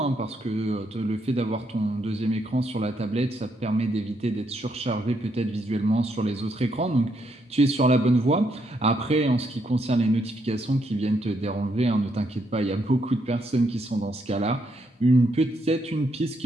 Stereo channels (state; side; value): normal; both; correlation 0.76